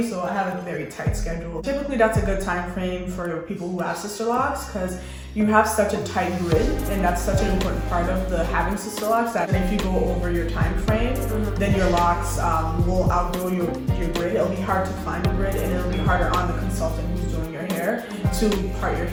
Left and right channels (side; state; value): both; identical; correlation 1.00